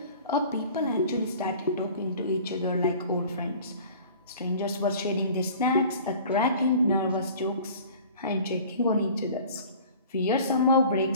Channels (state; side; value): inverted; both; correlation -0.45